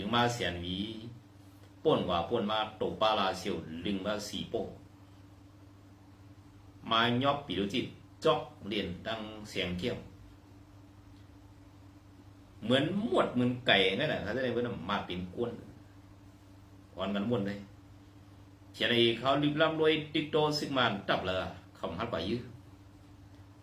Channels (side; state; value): both; identical; correlation 1.00